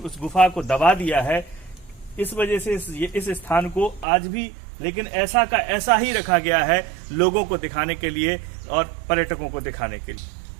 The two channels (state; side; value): drops out; left; at 4.0 s